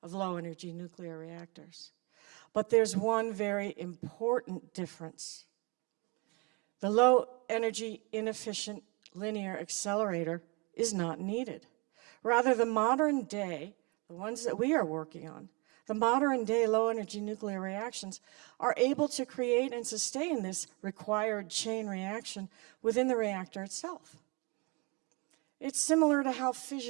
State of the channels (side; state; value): left; quieter; 29.1 dB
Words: of low-energy nuclear reactors. But there's one very important difference. The low-energy, inefficient linear accelerator is not needed. Rather, the modern day, the ones that we are working on, the modern day low-energy nuclear reactions are able to create and sustain this required chain reaction within the reactor itself. It's similar to how